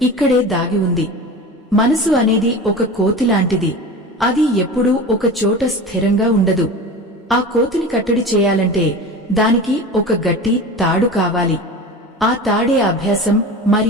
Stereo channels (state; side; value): normal; both; correlation 0.32